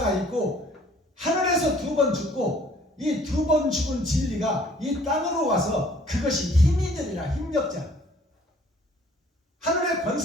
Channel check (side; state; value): both; normal; correlation 0.57